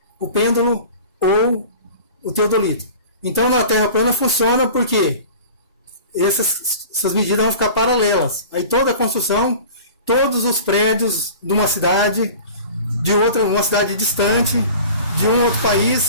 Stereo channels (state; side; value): inverted; both; correlation -0.40